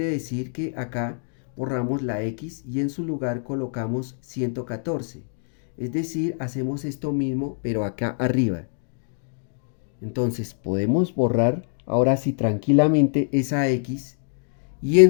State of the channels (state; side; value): silent; right; digital silence